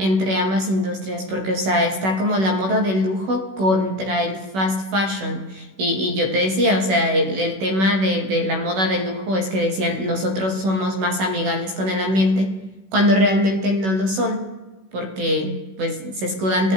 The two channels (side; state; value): left; late; 16 ms